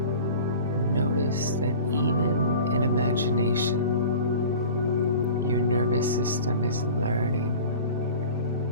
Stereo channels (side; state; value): both; inverted; correlation -0.40